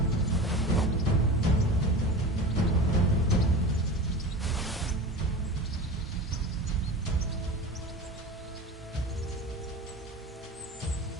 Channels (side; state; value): both; normal; correlation 0.32